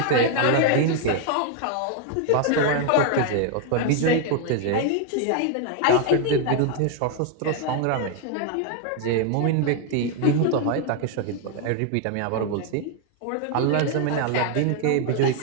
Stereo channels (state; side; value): different; both; correlation 0.00